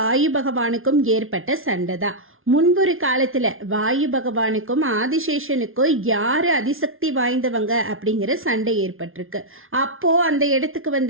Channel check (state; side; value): late; left; 0.60 ms